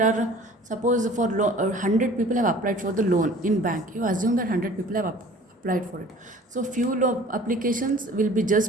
are, suppose for 100 people have applied for the loan in bank. You assume that 100 people have applied for it. So few applications will be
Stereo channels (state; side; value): normal; both; correlation 0.48